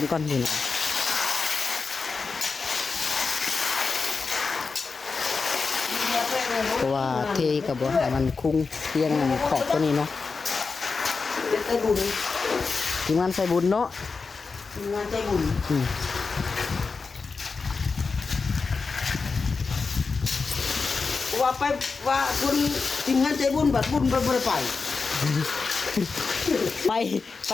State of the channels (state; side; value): quieter; right; 4.6 dB